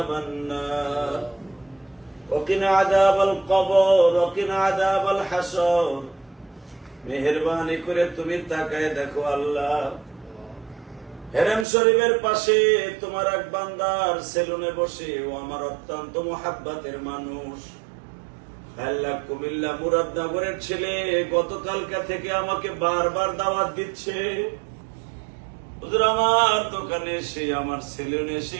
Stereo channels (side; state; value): left; drops out; at 11.7 s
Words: النار وقنا عذاب القبر وقنا عذاب الحشر মেহেরবানি করে তুমি তাকায় দেখো আল্লাহ, হেরেম শরীফের পাশে তোমার এক বান্দার সেলুনে বসে ও আমার অত্যন্ত মুহাব্বতের মানুষ আল্লাহ কুমিল্লা মুরাদনগরের ছেলে গতকালকা থেকে আমাকে বারবার দাওয়াত দিচ্ছে, হুজুর আমার দোকানে এসে আমার সেলুনে এসে